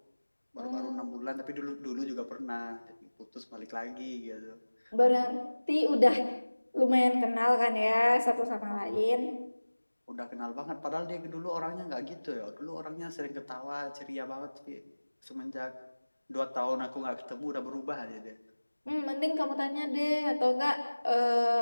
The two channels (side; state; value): both; inverted; correlation -1.00